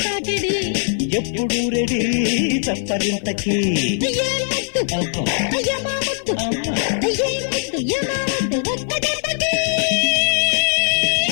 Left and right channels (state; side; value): silent; right; 66 dB below the other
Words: తాకిడి, ఎప్పుడు రెడీ చప్పరింతకి. ఏ ముద్దు అబ్బా, యమా ముద్దు, అమ్మా. ఏ ముద్దు యమా ముద్దు, ఒక్క దెబ్బకి